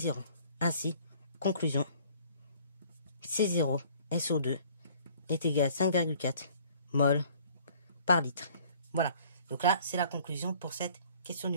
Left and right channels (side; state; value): both; inverted; correlation -0.55